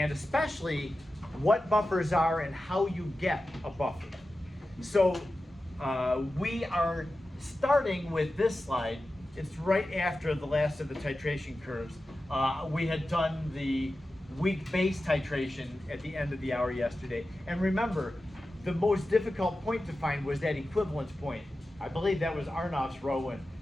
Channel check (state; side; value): normal; both; correlation 0.93